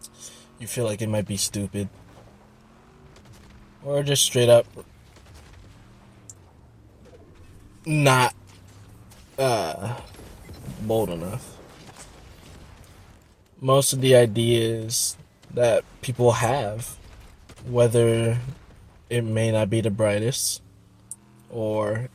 You feel like it might be stupid. Or just straight up not bold enough. Most of the ideas that people have, whether it may not be the brightest or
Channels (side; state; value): both; identical; correlation 1.00